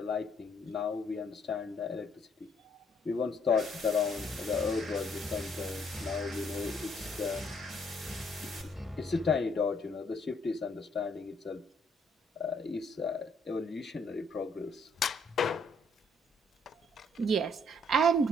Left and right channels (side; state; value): both; normal; correlation 0.68